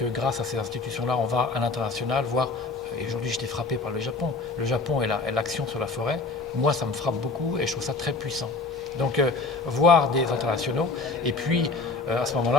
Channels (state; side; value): quieter; right; 3.8 dB